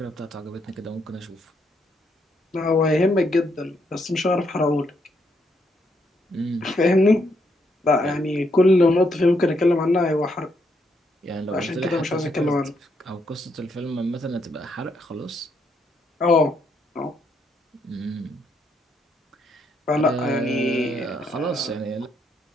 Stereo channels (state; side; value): normal; both; correlation 0.76